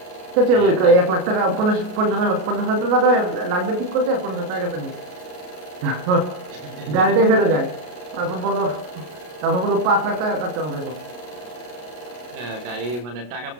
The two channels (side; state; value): left; late; 33 ms